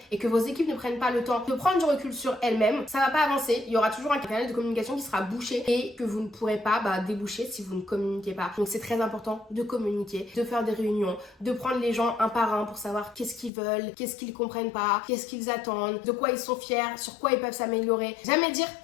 et que vos équipes ne prennent pas le temps de prendre du recul sur elles-mêmes, ça va pas avancer. Il y aura toujours un canal de communication qui sera bouché et que vous ne pourrez pas déboucher si vous ne communiquez pas. Donc c'est très important de communiquer, de faire des réunions, de prendre les gens un par un pour savoir qu'est-ce qu'ils veulent, qu'est-ce qu'ils comprennent pas, qu'est-ce qu'ils attendent, de quoi ils sont fiers, sur quoi ils peuvent s'améliorer. Jamais dire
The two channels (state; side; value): drops out; right; at 13.5 s